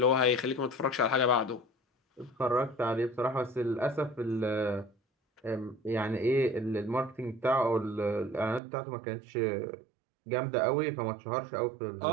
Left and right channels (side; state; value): left; drops out; at 8.6 s